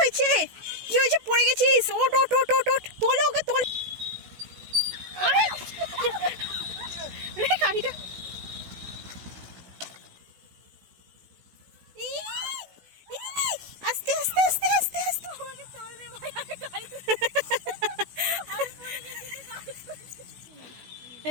হয়েছে? কি হয়েছে? পড়ে গেছিস? ওট ওট ওট ওট ওট, তোলো ওকে, তোল। গাড়িটা আস্তে আস্তে আস্তে আস্তে আস্তে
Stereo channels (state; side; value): late; left; 16 ms